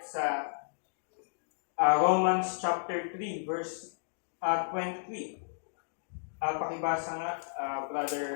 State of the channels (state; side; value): silent; right; digital silence